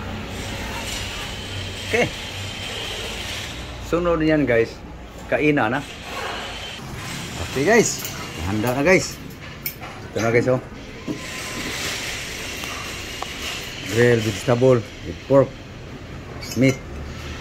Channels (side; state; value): both; identical; correlation 1.00